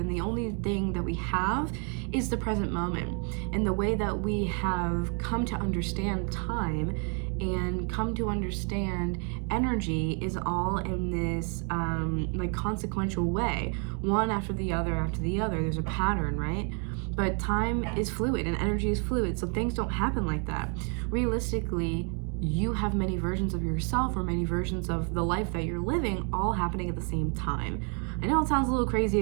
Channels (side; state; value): left; quieter; 39.3 dB